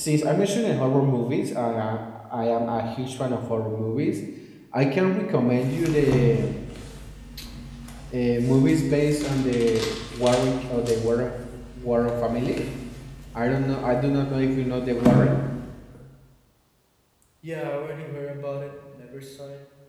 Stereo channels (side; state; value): both; identical; correlation 1.00